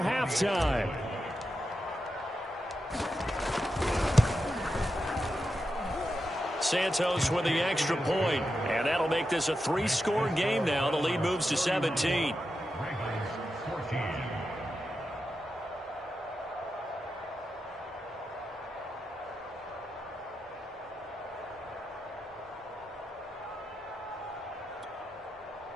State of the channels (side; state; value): both; normal; correlation 0.88